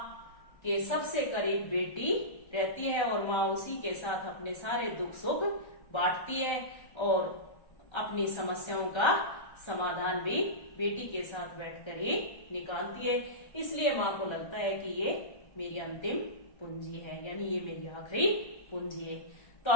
के सबसे करीब बेटी रहती है और माँ उसी के साथ अपने सारे दुख सुख बांटती है और अपनी समस्याओं का समाधान भी बेटी के साथ बैठकर ही निकालती है। इसलिए माँ को लगता है कि ये मेरी अंतिम पूंजी है, यानी ये मेरी आखिरी पूंजी है। तो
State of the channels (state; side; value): late; right; 1.3 ms